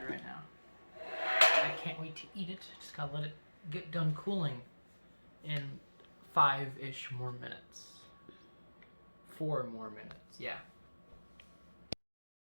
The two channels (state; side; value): inverted; both; correlation -1.00